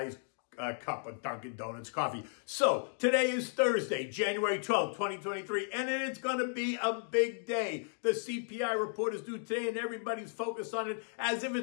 cup of Dunkin' Donuts coffee. So, today is Thursday, January 12th, 2023, and it's going to be a big day. The CPI report is due today, and everybody's focused on it as if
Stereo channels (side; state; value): right; silent; 55 dB below the other